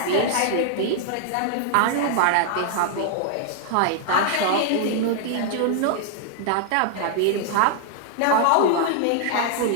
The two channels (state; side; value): different; both; correlation -0.01